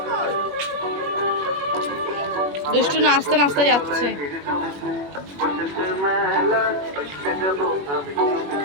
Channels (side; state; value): left; late; 21 ms